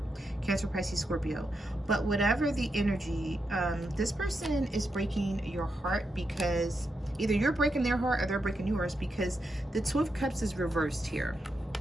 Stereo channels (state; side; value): normal; both; correlation 0.85